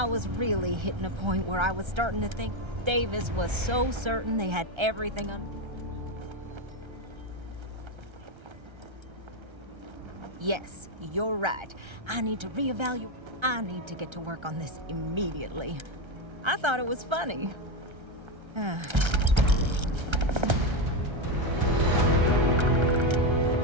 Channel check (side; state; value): left; late; 1.3 ms